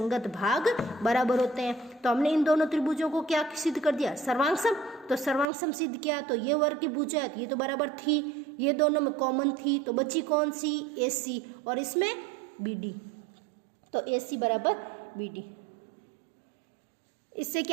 भाग बराबर होते हैं। तो हमने इन दोनों त्रिभुजों को क्या सिद्ध कर दिया, सर्वांग सम, तो सर्वांग सम सिद्ध किया, तो ये वर्ग की भुजा ये तो बराबर थी, ये दोनों में कॉमन थी, तो बची कौन सी, ए सी, और इसमें बी डी, तो ए सी बराबर बी डी। इससे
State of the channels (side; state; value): left; drops out; at 5.5 s